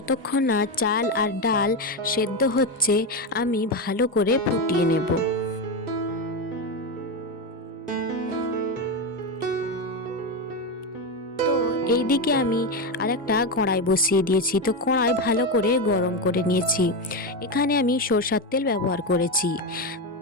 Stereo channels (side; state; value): both; normal; correlation 0.12